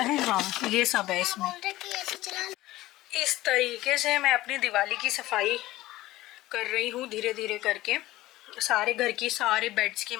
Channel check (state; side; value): quieter; right; 17.0 dB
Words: हाँ ये सब है इसमें। इस तरीके से मैं अपनी दिवाली की सफाई कर रही हूँ धीरे धीरे करके। सारे घर की सारे बेड्स की